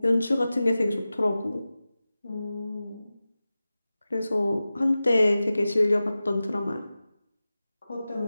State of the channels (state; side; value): inverted; both; correlation -0.95